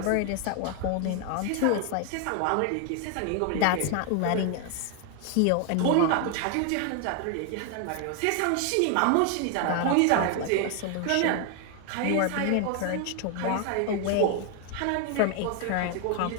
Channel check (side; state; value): both; different; correlation 0.00